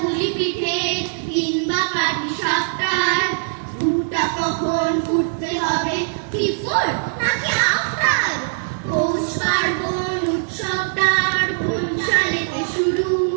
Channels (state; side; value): silent; left; 57 dB below the other